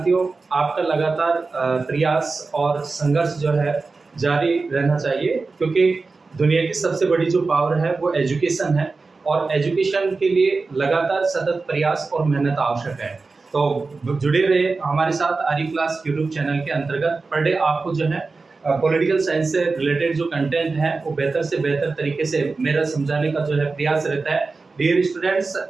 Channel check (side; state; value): left; quieter; 4.0 dB